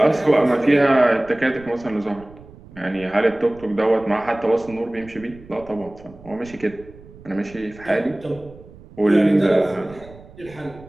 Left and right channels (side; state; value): right; noise; rumble, 21 dB below the sound